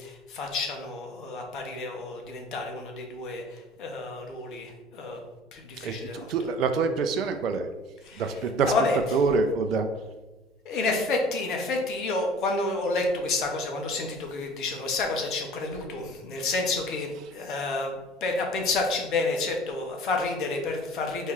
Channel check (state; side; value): normal; both; correlation 0.47